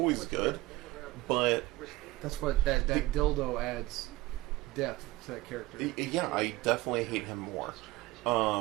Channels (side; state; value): left; quieter; 19.0 dB